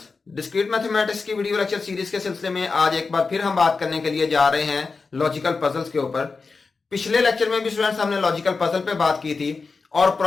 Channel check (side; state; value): right; quieter; 4.4 dB